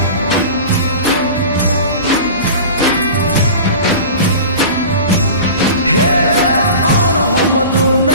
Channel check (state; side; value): inverted; both; correlation -0.36